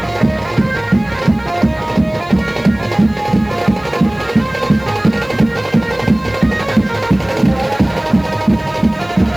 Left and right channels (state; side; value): noise; left; hiss, 29 dB below the sound